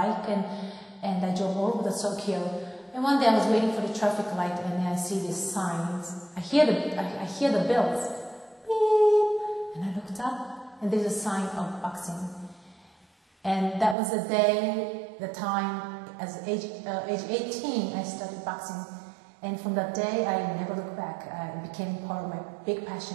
and I drove all over the Tokyo. And one day I was waiting for the traffic light, and I see these signs. I hear the bells, beep, and I looked up, and there's a sign of boxing. And that was the day, the time, as age 18, I started boxing. And from that day, I never looked back. It became part of my big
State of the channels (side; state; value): left; drops out; at 14.0 s